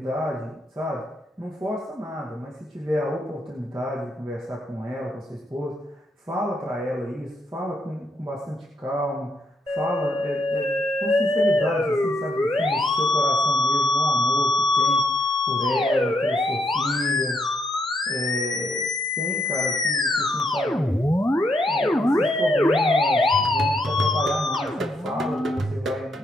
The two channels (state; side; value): normal; both; correlation 0.76